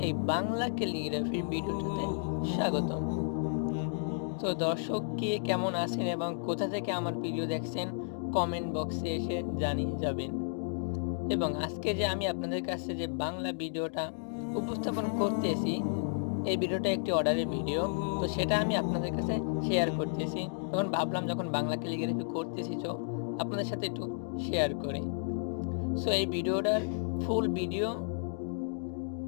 এই বাংলা ক্যালিগ্রাফির ভিডিওটাতে স্বাগতম। তো দর্শক কে কেমন আছেন এবং কোথা থেকে আমার ভিডিও দেখছেন কমেন্ট বক্সে এসে জানিয়ে যাবেন। এবং আজকে যে আমি আপনাদের কাছে যে বাংলা ভিডিওটা উপস্থাপন করতেছি, এই ভিডিওটা একটি অর্ডারের ভিডিও। তো সেটা আমি আপনাদের কাছে শেয়ার করতেছি। তখন ভাবলাম যখন বাংলা ক্যালিগ্রাফি করতেছি তো আপনাদের সাথে একটু শেয়ার করি। সো এই ভিডিওটার ফুল ভিডিও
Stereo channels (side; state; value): right; silent; digital silence